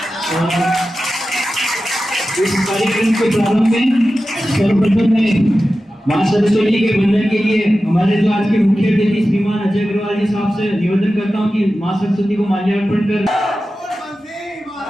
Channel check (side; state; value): both; normal; correlation 0.93